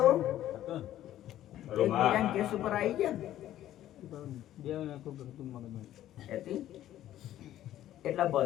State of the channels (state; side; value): quieter; right; 12.8 dB